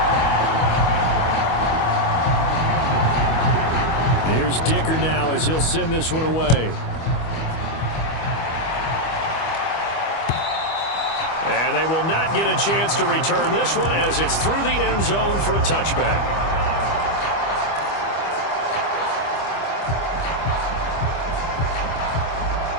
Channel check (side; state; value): right; late; 25 ms